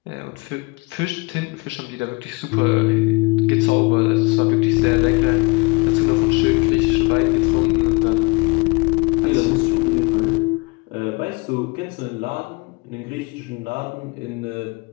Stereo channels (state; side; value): quieter; right; 27.5 dB